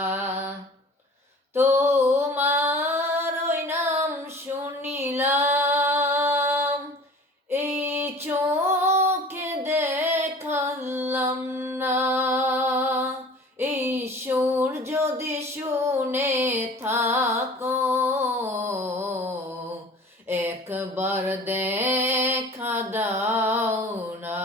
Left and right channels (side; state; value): both; normal; correlation 0.44